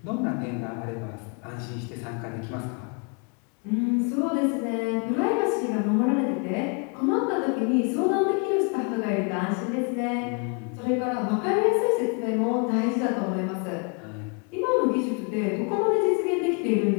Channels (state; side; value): quieter; right; 36.4 dB